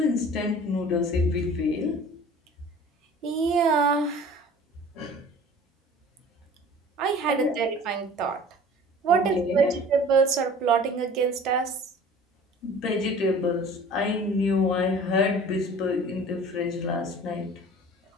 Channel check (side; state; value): both; normal; correlation 0.45